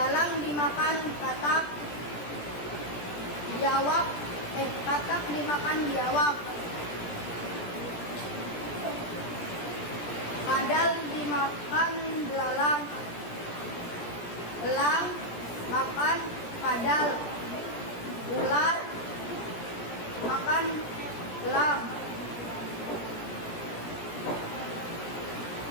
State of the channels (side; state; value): right; late; 17 ms